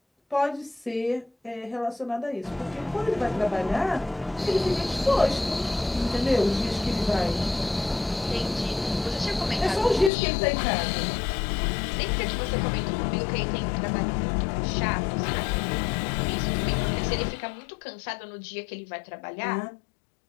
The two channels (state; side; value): drops out; right; at 10.1 s